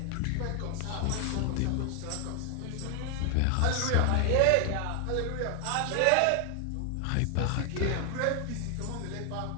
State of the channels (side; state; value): both; different; correlation 0.00